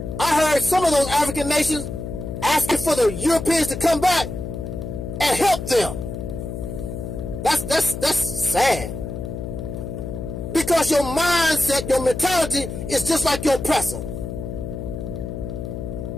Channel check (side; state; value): left; noise; hum, 7 dB below the sound